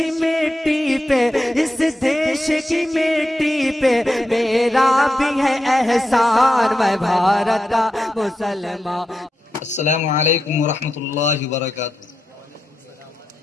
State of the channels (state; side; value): normal; both; correlation 0.88